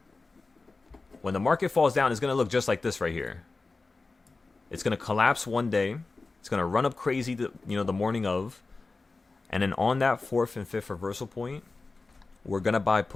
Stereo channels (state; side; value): quieter; right; 3.7 dB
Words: when the market falls down, it's going to look just like this right here. It's going to collapse one day. It's going to run up crazy, the morning of. And then on that 4th and 5th reversal point, we're going to buy